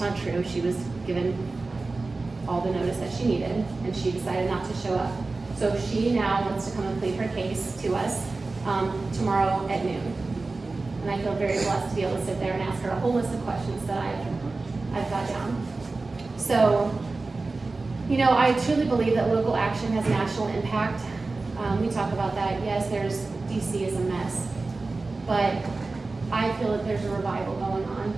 true. She was given all the notice that she needed, and she decided not to show up. So she now wants to come and plead her case to us tomorrow at noon. And I feel very blessed to be able to sit there and ask her a whole list of questions that I've got down. So, I truly believe that local action has national impact. We talk about that. Yes, DC is a mess, but I feel that there's a revival going on,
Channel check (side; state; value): left; quieter; 3.6 dB